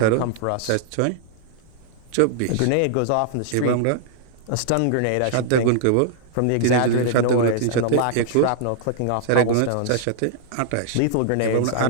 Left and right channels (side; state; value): both; different; correlation -0.01